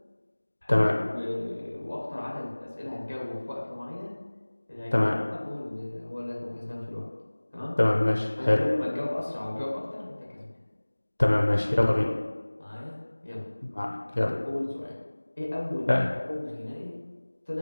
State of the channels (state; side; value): inverted; both; correlation -1.00